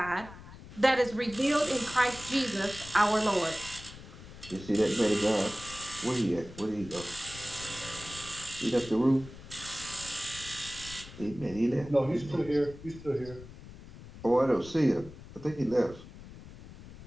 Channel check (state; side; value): noise; left; rumble, 16 dB below the sound